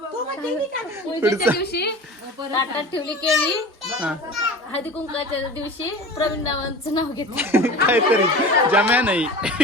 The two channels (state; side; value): normal; both; correlation 0.36